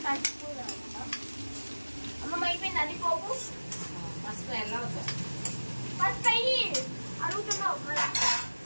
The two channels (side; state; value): both; inverted; correlation -1.00